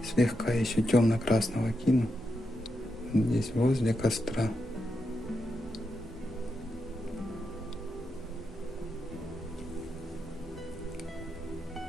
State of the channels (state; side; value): normal; both; correlation 0.85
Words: Слегка еще темно-красного кину. Здесь возле костра.